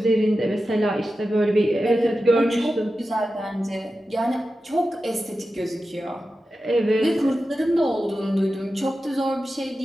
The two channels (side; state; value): both; normal; correlation 0.92